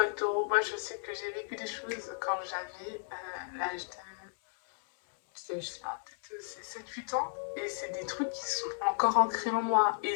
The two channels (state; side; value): silent; right; 55 dB below the other